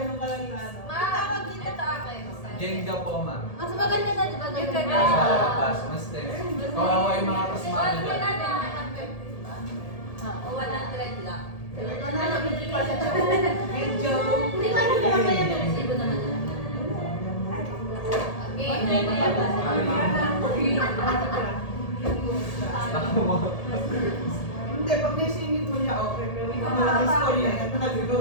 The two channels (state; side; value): late; right; 1.8 ms